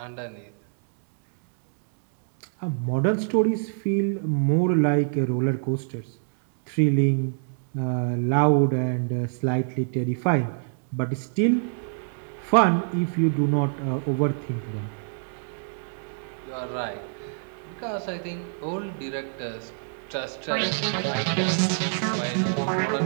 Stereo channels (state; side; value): silent; left; 61 dB below the other